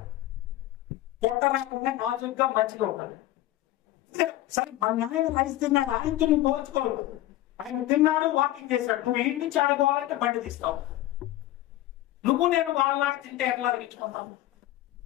పొట్ట రాకుండా నాజుగా మంచిగా ఉంటారు. సరే మా నాయన రైస్ తిన్నాడు, ఆయనకి నువ్వు పోల్చుకోవద్దు. ఆయన తిన్నాడు, వాకింగ్ చేశాడు, నువ్వు ఇంటి నుంచి ఆడుకోవాలంటే బండి తీస్తావు. నువ్వు నేను వాళ్ళలాగా తింటే ఎట్లా అరిగించుకుంటావు?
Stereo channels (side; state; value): right; quieter; 15.1 dB